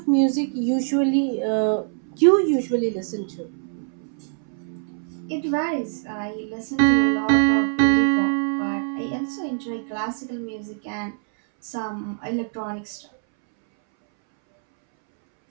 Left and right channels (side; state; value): left; silent; 62 dB below the other